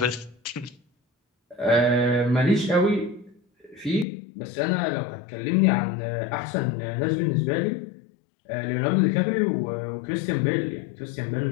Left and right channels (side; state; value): right; drops out; at 4.0 s